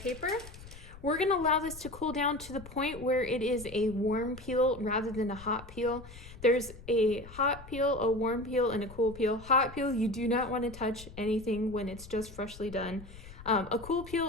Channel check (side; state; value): left; noise; rumble, 16 dB below the sound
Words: We're going to allow this to cool down to the point where it is a warm peel rather than a hot peel. There's a hot peel, a warm peel, and a cool peel. Hot peel, you do not want to touch anything when it's just freshly done. A cool